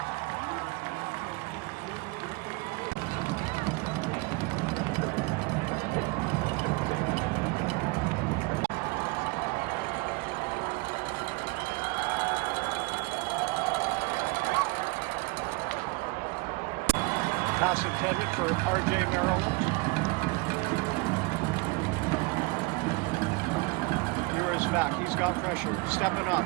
Pass intended for R.J. Maryland. Ewers back. He's got pressure. Stepping up.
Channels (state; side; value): quieter; left; 26.7 dB